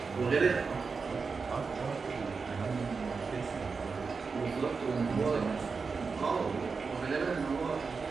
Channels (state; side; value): quieter; left; 4.9 dB